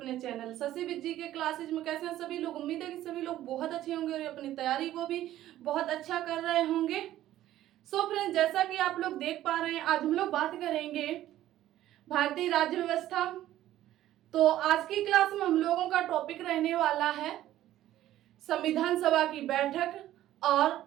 चैनल शशि विद जी के क्लासेज में। कैसे हैं सभी लोग? उम्मीद है कि सभी लोग बहुत अच्छे होंगे और अपनी तैयारी को भी बहुत अच्छा कर रहे होंगे। सो फ्रेंड्स, जैसा कि आप लोग देख पा रहे हैं, आज हम लोग बात करेंगे भारतीय राज्य व्यवस्था। तो आज की क्लास में हम लोगों का टॉपिक रहने वाला है संविधान सभा की बैठक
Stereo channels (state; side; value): quieter; left; 13.5 dB